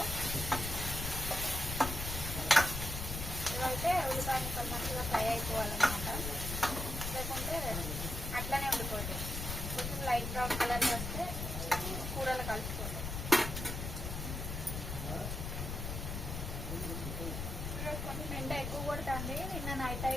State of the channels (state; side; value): noise; left; rumble, 4 dB below the sound